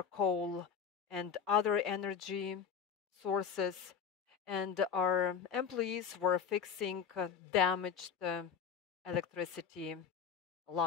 and other energy sources, and our employees were fixing damaged electricity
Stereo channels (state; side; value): quieter; right; 7.1 dB